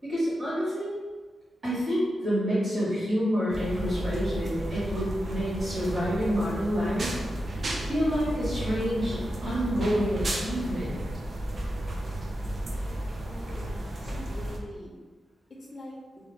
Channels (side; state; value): both; normal; correlation 0.89